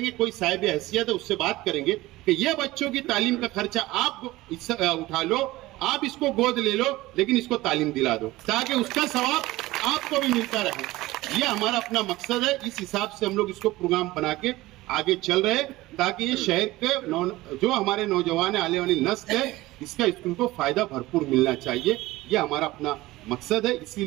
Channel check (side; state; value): left; quieter; 18.5 dB